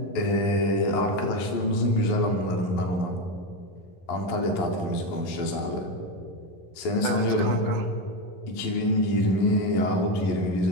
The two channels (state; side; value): late; right; 11 ms